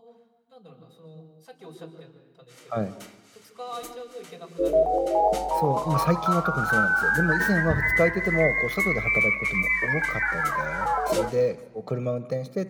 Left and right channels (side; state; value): both; identical; correlation 1.00